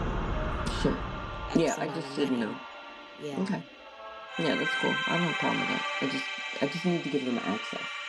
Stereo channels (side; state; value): both; identical; correlation 1.00